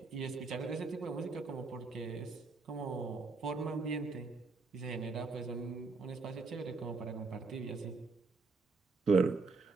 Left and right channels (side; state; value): left; quieter; 4.0 dB